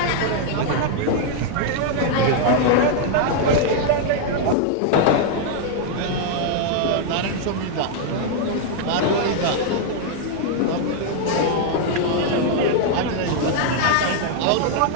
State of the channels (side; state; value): both; different; correlation 0.00